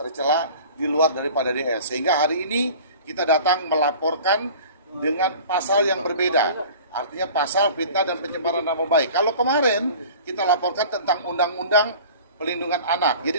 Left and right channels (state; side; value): inverted; both; correlation -0.42